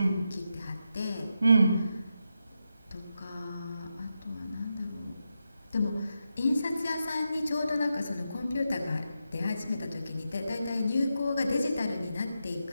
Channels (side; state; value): both; inverted; correlation -0.87